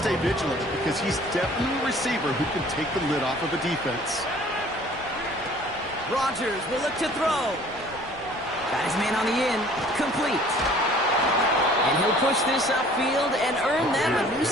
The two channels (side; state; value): left; noise; rumble, 22 dB below the sound